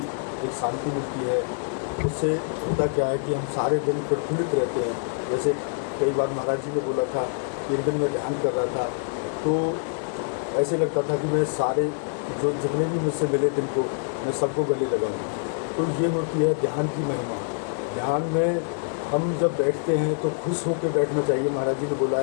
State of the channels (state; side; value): silent; right; digital silence